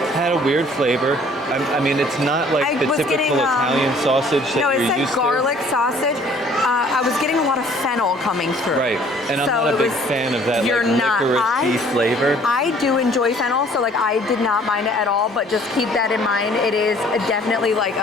had a weird flavor. I mean, it's not like I the was typical getting, Italian sausage that No, it you're said used garlic sausage. I was getting a lot of fennel coming through. to. Right, and I'm So not a it big was- fan of that You're like not. licorice flavor. I do enjoy fennel, so like I did not mind it at all. But just keep that in mind. It is definitely like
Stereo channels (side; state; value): both; normal; correlation 0.56